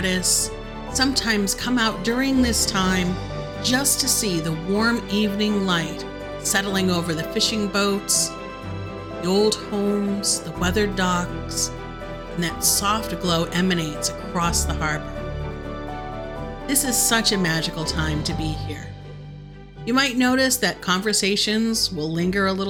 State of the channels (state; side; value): identical; both; correlation 1.00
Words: sometimes come out during this time just to see the warm evening light settling over the fishing boats, the old homes, the weathered docks, and that soft glow emanates across the harbor. This is such a magical time to be here. You might notice that conversations will linger a